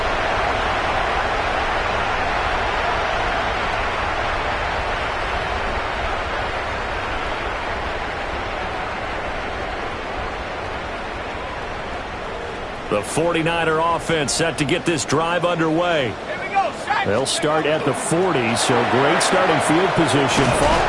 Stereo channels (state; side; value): identical; both; correlation 1.00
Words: The 49er offense set to get this drive underway. They'll start at the 40, so great starting field position.